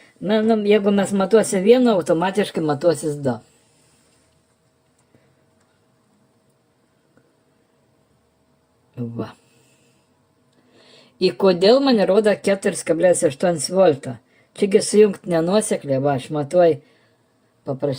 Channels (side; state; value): both; identical; correlation 1.00